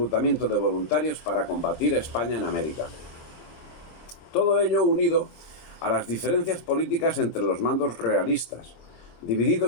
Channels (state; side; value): late; right; 26 ms